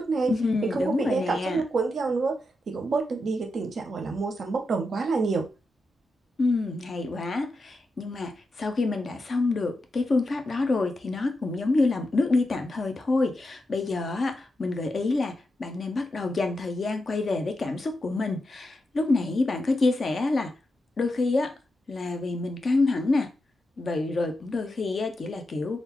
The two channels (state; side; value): normal; both; correlation 0.87